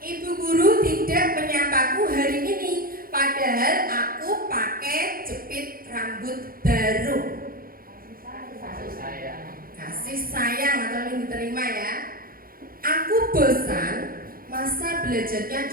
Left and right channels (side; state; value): left; late; 0.42 ms